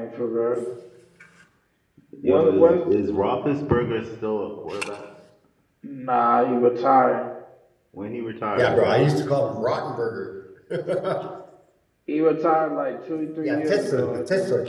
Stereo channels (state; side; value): identical; both; correlation 1.00